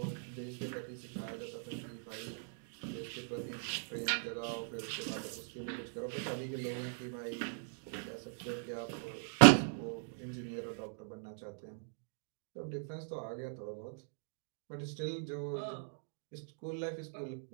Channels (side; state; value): left; silent; digital silence